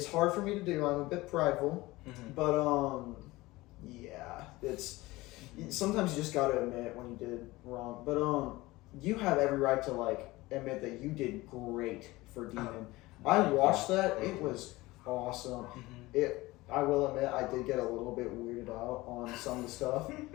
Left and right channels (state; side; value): quieter; right; 20.0 dB